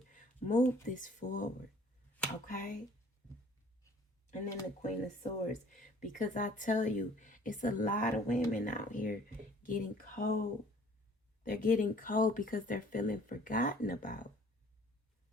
Move this forward. Okay? And then the Queen of Swords. Because I tell you, it's a lot of women out here getting cold. They're getting cold because they're feeling forgotten about.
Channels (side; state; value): both; normal; correlation 0.53